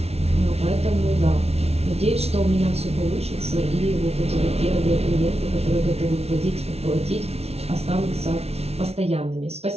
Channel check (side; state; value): left; late; 0.30 ms